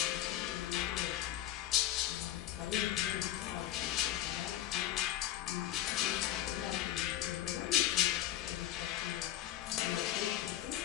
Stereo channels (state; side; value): quieter; right; 13.0 dB